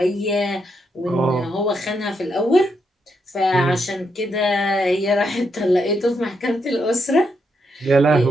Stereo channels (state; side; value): normal; both; correlation 0.80